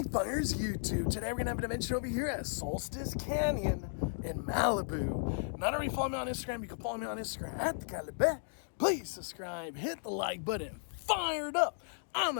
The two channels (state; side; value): silent; right; digital silence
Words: Fires YouTube. Today we're gonna have an adventure over here at Solstice Canyon in Malibu. Not already follow me on Instagram, you can follow me on Instagram at the Keller Blvd. Please subscribe, hit the like button, fire it up. I'm